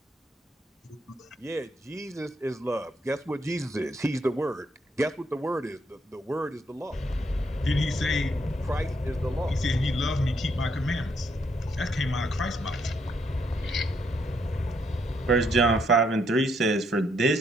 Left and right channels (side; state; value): both; normal; correlation 0.74